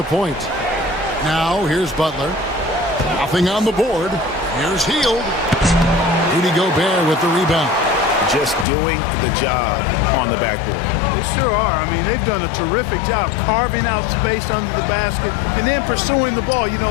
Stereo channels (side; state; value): right; drops out; at 8.7 s